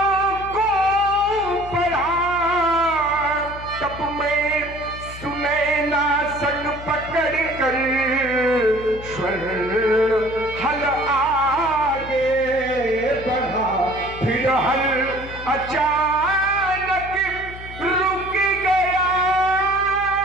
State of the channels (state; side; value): noise; left; hum, 14 dB below the sound